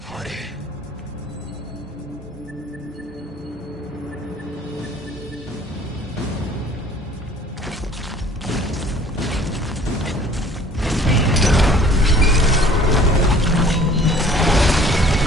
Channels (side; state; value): both; normal; correlation 0.53